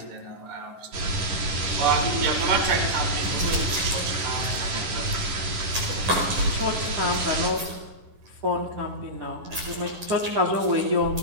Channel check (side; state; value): left; late; 10 ms